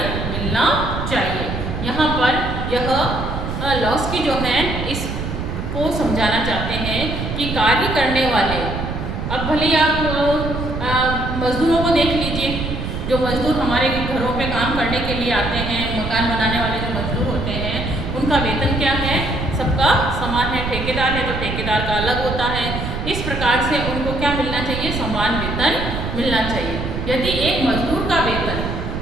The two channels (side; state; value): right; noise; rumble, 4 dB below the sound